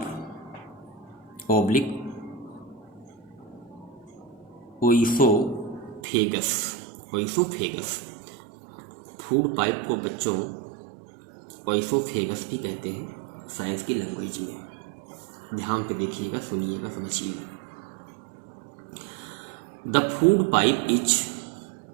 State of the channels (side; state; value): left; drops out; at 6.0 s